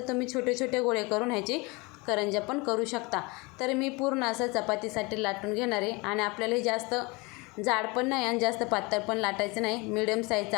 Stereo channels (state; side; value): quieter; right; 26.5 dB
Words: तुम्ही छोटे गोळे करून ह्याची करंज्या पण करू शकता. तर मी पूर्ण असं चपातीसाठी लाटून घेणार आहे. आणि आपल्याला हे जास्त जाड पण नाही आणि जास्त पातळ पण लाटायचं नाही, मिडियम साईजचं